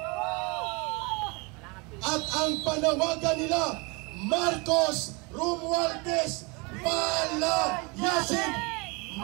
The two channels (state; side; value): quieter; left; 29.1 dB